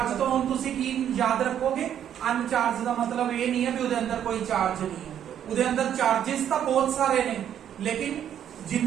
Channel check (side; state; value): left; quieter; 9.8 dB